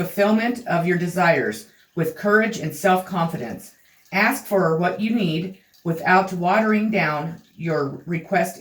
of your desires with courage and self-confidence. Ask for what you need without watering down your request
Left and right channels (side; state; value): both; identical; correlation 1.00